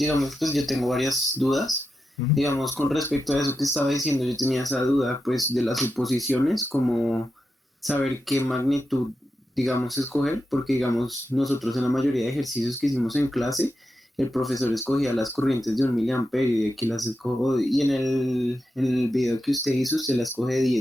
pues yo tengo varias dudas. Ujú. Digamos, con respecto a eso que estaba diciendo, yo tenía esa duda, pues, de las suposiciones, como saber qué magnitud, digamos, escoger, porque, digamos, nosotros en la mayoría de ejercicios que hicimos en clase, el profesor escogía las corrientes de 1 miliamperio y aquí las escojo, y en el video que usted hizo, usted las coge de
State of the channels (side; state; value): both; normal; correlation 0.88